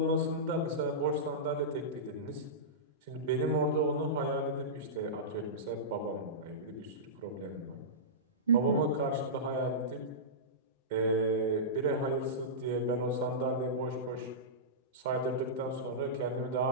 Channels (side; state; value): both; normal; correlation -0.17